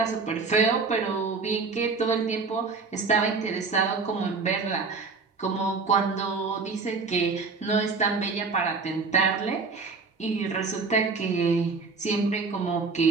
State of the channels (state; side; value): quieter; left; 4.5 dB